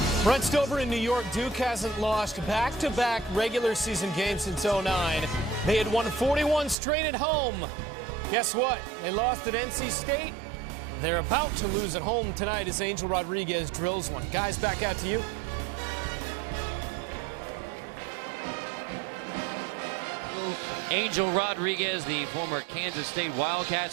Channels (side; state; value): left; drops out; at 6.8 s